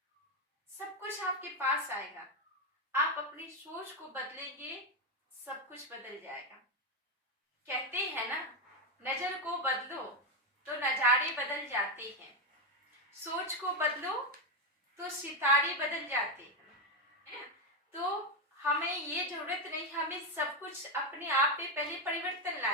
सब कुछ आपके पास आएगा, आप अपनी सोच को बदलेंगे, सब कुछ बदल जाएगा। कहते हैं ना, नजर को बदलो तो नजारे बदल जाते हैं, सोच को बदलो तो सितारे बदल जाते हैं। तो हमें ये जरूरत नहीं, हमें सब कुछ अपने आप पे पहले परिवर्तन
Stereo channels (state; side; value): normal; both; correlation 0.08